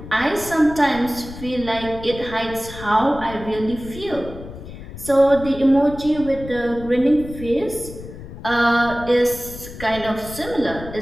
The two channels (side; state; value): left; noise; rumble, 13 dB below the sound